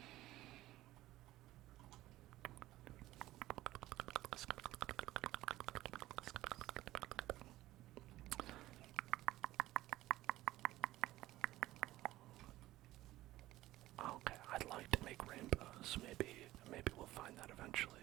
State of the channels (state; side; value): quieter; left; 16.1 dB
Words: Okay, I'd like to make rainbows. Maybe we'll find that eventually.